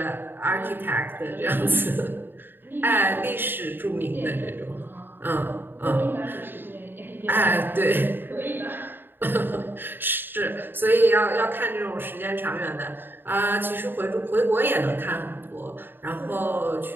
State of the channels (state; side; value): late; left; 0.097 ms